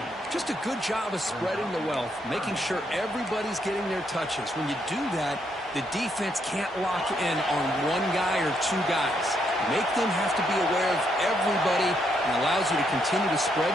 Just a good job of spreading the wealth, making sure everybody's getting their touches. When you do that, the defense can't lock in on one guy or two guys. Make them have to be aware of everybody and allows you to continue to spread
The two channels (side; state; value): both; normal; correlation 0.76